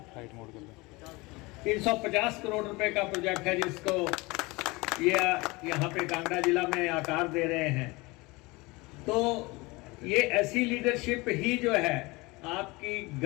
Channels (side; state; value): right; quieter; 23.8 dB